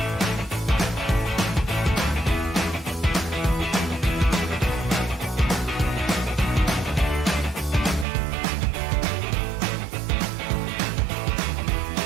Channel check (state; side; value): drops out; left; at 8.1 s